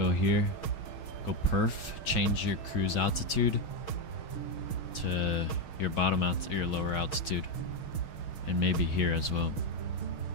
here, go perf, change your cruise altitude to your bottom your lower altitude, and maybe here as well.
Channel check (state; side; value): late; right; 6.4 ms